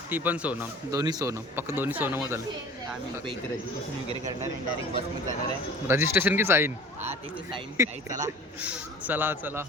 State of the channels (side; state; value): both; normal; correlation 0.43